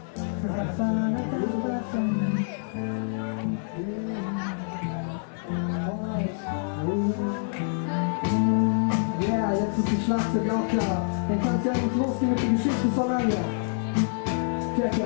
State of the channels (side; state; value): right; silent; 60 dB below the other